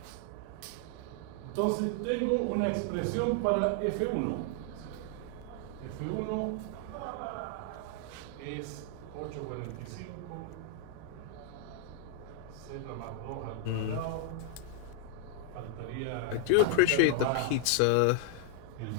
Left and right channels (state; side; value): different; both; correlation 0.00